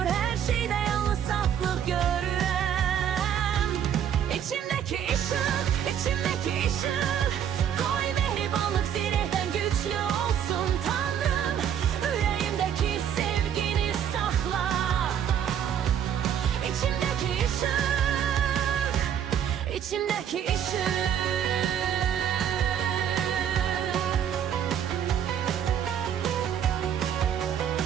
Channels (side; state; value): left; quieter; 9.2 dB